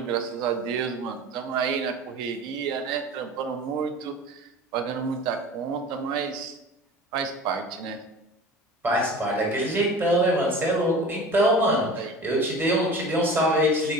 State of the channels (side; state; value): both; normal; correlation 0.38